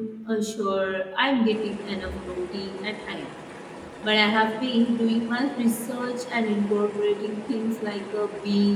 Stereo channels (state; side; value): identical; both; correlation 1.00